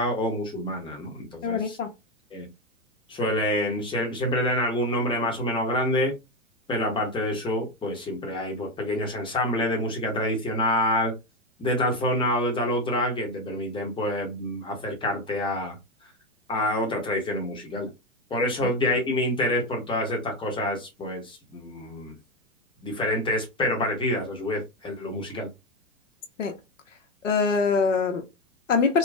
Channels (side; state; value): both; normal; correlation 0.12